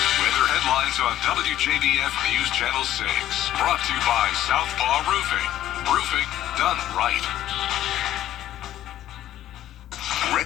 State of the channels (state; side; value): quieter; right; 12.7 dB